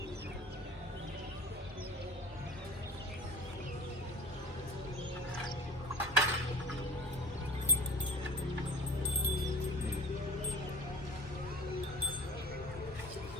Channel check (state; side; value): normal; both; correlation 0.41